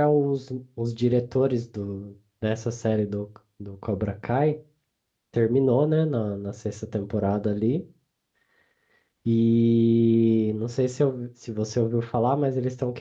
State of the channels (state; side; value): identical; both; correlation 1.00